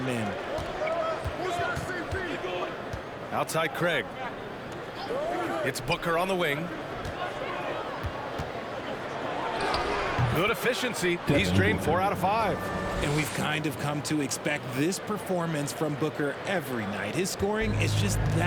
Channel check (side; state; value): both; identical; correlation 1.00